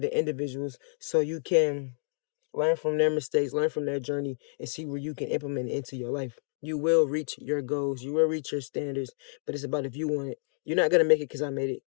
individuals so you can learn from their mistakes, learn from their journey, and see where you can implement it into your life. You will reach your goals. You will reach your standards, but it's about if you want it. You're not going to make it because I made it.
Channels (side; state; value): right; silent; digital silence